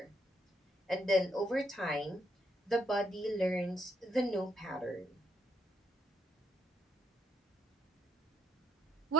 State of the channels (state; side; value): normal; both; correlation 0.74